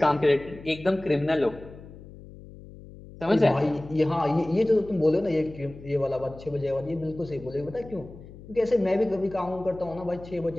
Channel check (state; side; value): noise; left; hum, 17 dB below the sound